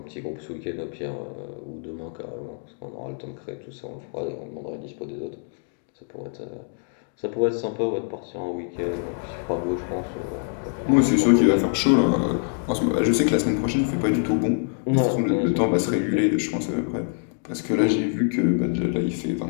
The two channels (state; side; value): silent; right; 57 dB below the other